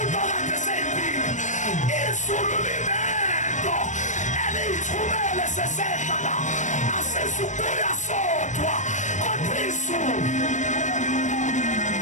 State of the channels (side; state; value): right; late; 0.35 ms